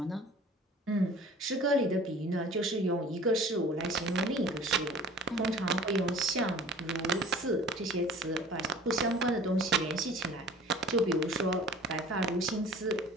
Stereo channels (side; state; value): both; normal; correlation 0.45